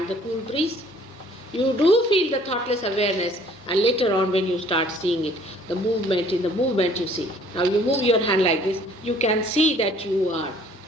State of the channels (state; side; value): normal; both; correlation 0.57